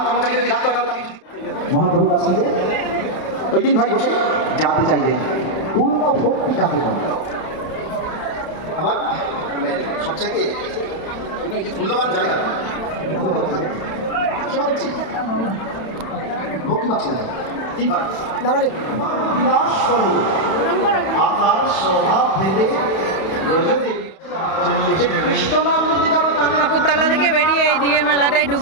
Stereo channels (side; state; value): right; late; 31 ms